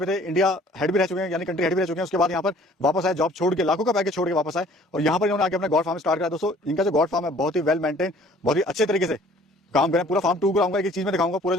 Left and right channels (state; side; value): normal; both; correlation 0.54